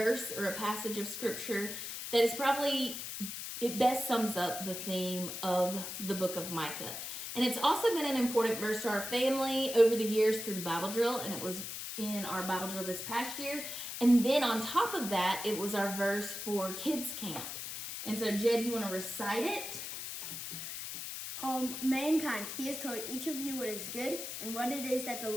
or a passage of scripture that is probably, it best sums up the theme of the book of Micah. And it's also been an important verse to our family over the years through Bible drill, and it was in our Bible drill this past year. And then on top of that, it was our verse for kids camp. And so Jed, you want to recite it? Mankind, he has told each of you what is good and what it is that the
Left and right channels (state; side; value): noise; left; hiss, 7 dB below the sound